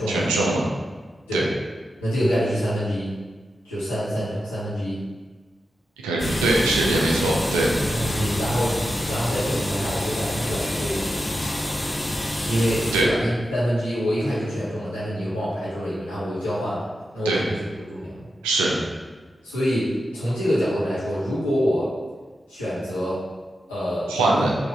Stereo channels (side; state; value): both; normal; correlation 0.88